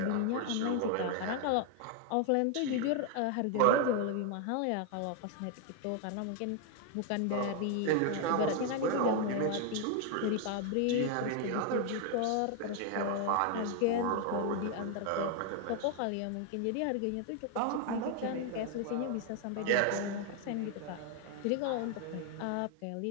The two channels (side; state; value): both; different; correlation 0.00